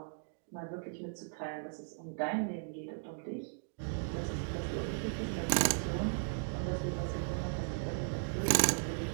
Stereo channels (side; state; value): left; silent; digital silence